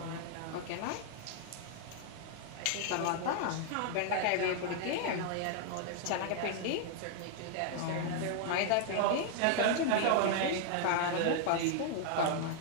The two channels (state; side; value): different; both; correlation 0.00